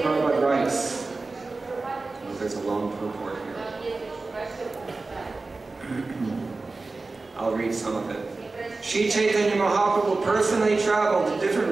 Prabhupada writes, oh, there's a long purport here. I'll read some of it. Sri Chaitanya Mahaprabhu personally traveled to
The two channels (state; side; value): quieter; left; 3.6 dB